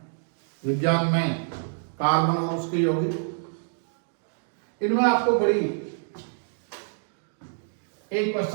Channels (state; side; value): silent; left; digital silence